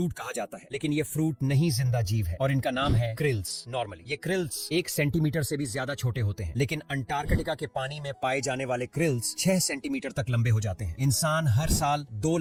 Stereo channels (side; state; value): both; identical; correlation 1.00